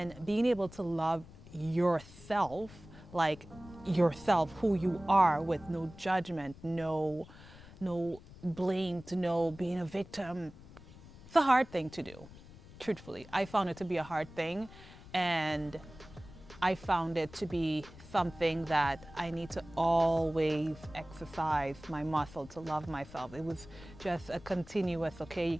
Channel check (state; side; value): noise; left; rumble, 19 dB below the sound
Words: being able to love yourself, like yourself, who you are, with no judgment, no blame, to no being a victim. It's a hard thing to do, truthfully. I found it to be a hard thing, and I found it to be something that I need to always exercise my muscle to love myself. It was just a continuous, okay, you